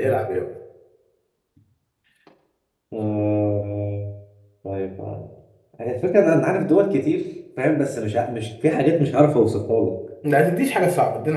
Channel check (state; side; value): identical; both; correlation 1.00